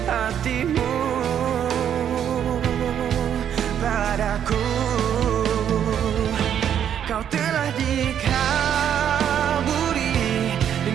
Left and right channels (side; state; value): left; quieter; 9.3 dB